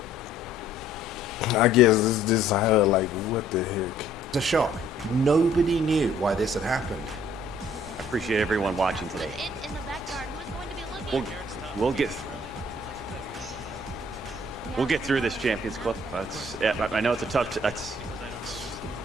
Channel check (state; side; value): normal; both; correlation 0.59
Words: I guess this is how, like, what the heck? It's a shock. Nobody knew why this had happened. I appreciate everyone watching today. We'll get through this, Champions Club. I know it's a tough.